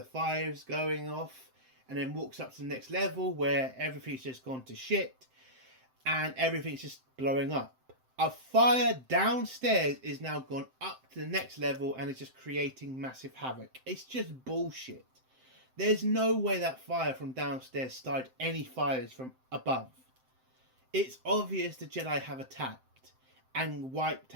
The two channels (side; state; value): left; late; 7.7 ms